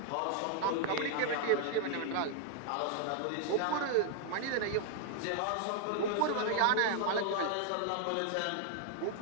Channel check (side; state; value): both; different; correlation 0.00